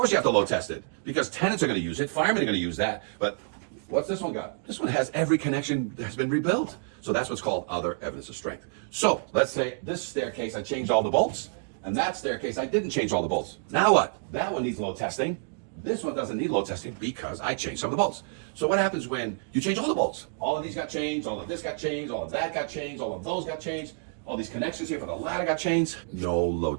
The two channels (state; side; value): silent; left; digital silence